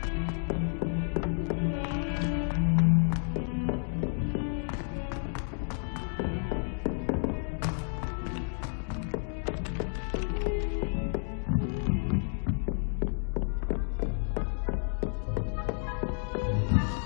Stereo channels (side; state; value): right; silent; 57 dB below the other